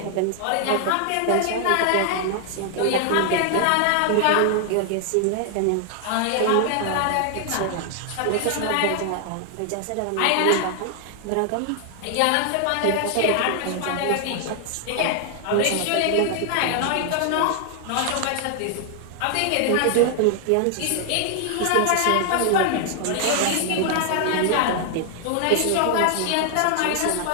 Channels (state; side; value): different; both; correlation 0.00